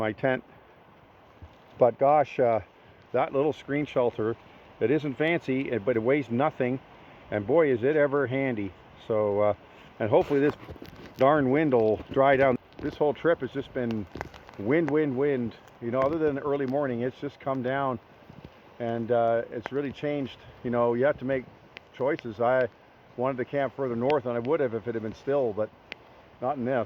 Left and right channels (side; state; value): both; identical; correlation 1.00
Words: tent. But gosh, that little screen shelter, it isn't fancy, but it weighs nothing. And boy, is it ever handy. So, and hopefully this darn wind will dry down. This whole trip has just been wind. You know, other than the early morning, it's just come down, and it's really changed. You know, you have to make choices. I wanted to camp further north, and I would have if it had been still, but not in